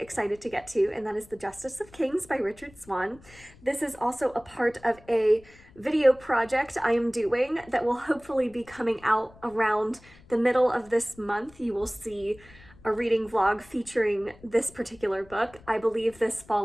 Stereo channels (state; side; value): noise; left; rumble, 24 dB below the sound